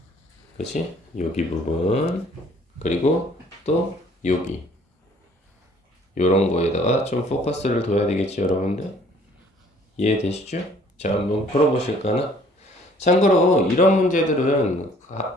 그치? 여기 부분 그리고 또 여기 요런 거에다가 좀 포커스를 둬야 되겠지 여러분들? 이해되시죠? 자 한번 풀어보실까나? 참고로 이런 문제들은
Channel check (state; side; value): normal; both; correlation 0.57